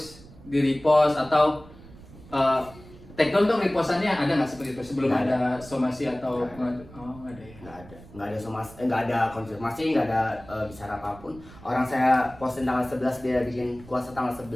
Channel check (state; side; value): noise; right; rumble, 20 dB below the sound